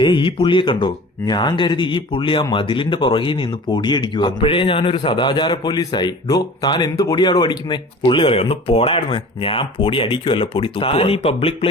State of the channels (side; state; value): both; normal; correlation 0.41